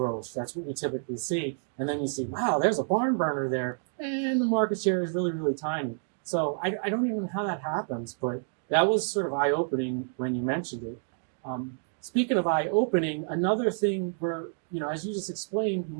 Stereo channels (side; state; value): left; silent; digital silence